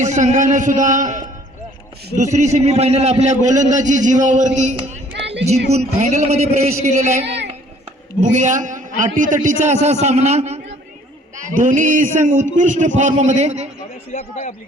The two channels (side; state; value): both; normal; correlation 0.57